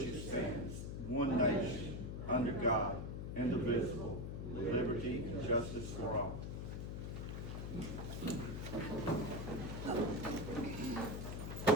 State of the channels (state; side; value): noise; left; hum, 5 dB below the sound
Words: it stands, one nation, under God, indivisible, with liberty and justice for all. Commissioner